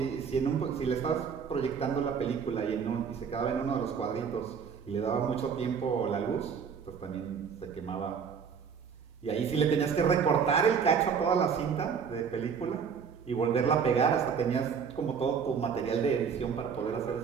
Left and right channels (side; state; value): left; quieter; 6.6 dB